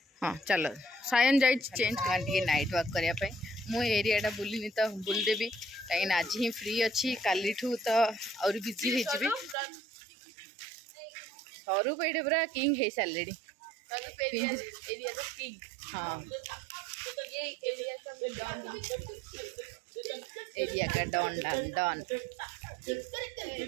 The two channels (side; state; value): left; drops out; at 9.6 s